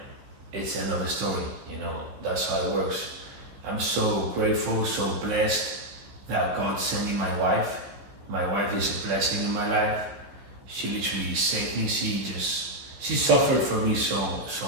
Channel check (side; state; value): left; late; 15 ms